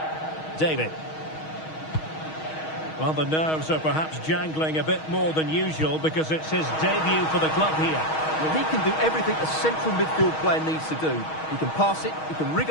David. Well, the nerves are perhaps jangling a bit more than usual because it's his debut for the club here. Well, he can do everything a central midfield player needs to do. He can pass it, he can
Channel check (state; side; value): late; right; 6.3 ms